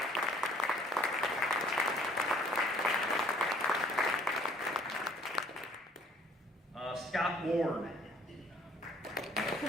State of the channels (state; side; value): normal; both; correlation 0.58